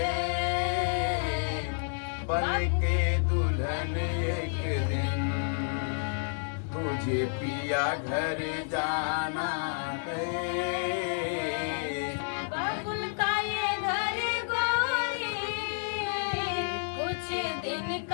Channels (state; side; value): silent; right; digital silence